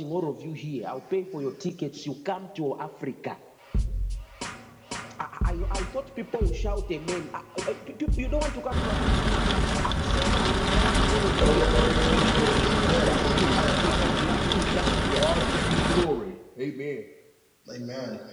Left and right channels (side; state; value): both; identical; correlation 1.00